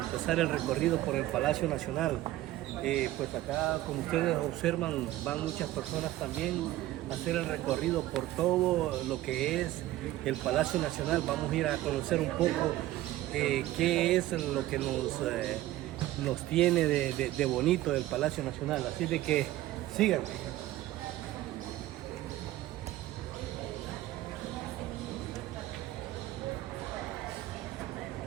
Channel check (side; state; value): left; quieter; 15.6 dB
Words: el recorrido por el Palacio Nacional. Pues acá, como ustedes observan, van muchas personas también a hacer el recorrido por todo lo que es el Palacio Nacional. Vamos a ir a conocer un poco qué es lo que nos tiene de bonito el Palacio Nacional. Así de que síganme.